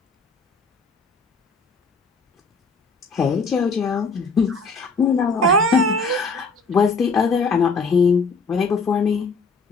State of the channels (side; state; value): right; quieter; 3.8 dB